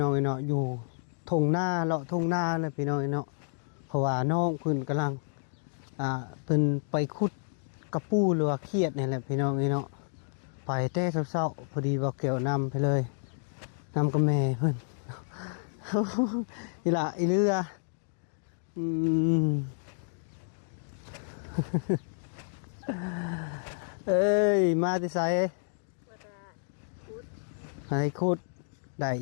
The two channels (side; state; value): right; silent; digital silence